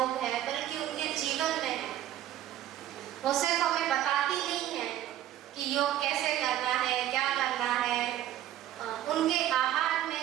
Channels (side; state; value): left; quieter; 12.5 dB